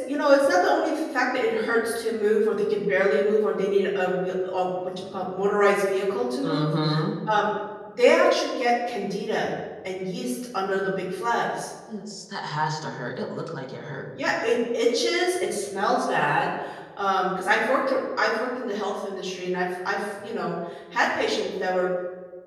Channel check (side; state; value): both; identical; correlation 1.00